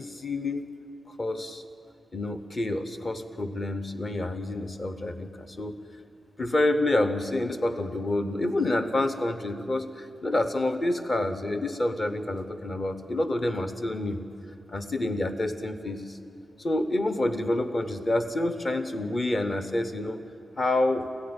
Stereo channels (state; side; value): normal; both; correlation 0.90